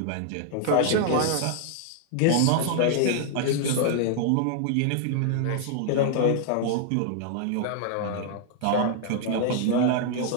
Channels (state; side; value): different; both; correlation -0.01